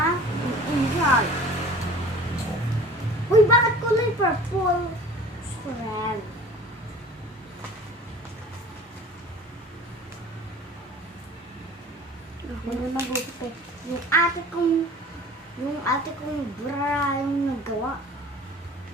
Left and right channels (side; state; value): both; normal; correlation 0.44